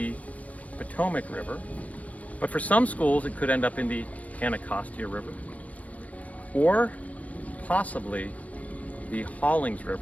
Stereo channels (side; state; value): right; late; 0.070 ms